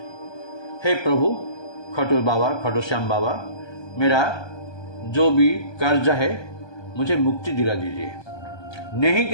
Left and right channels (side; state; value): right; late; 1.2 ms